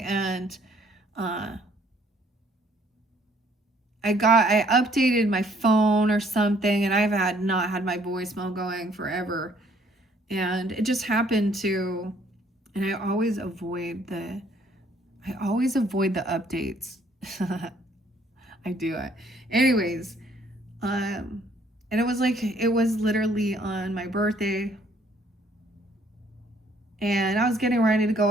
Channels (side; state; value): both; normal; correlation 0.63